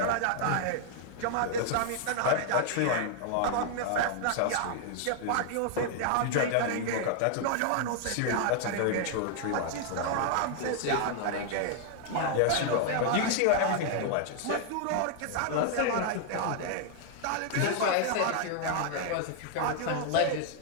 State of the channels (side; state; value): both; different; correlation 0.00